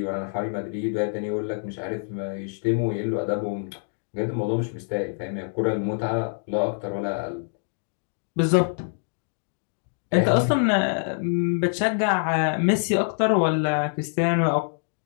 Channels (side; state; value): right; silent; 61 dB below the other